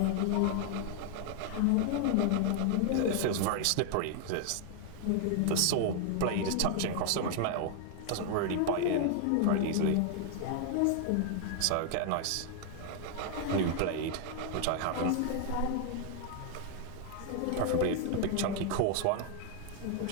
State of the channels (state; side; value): different; both; correlation 0.00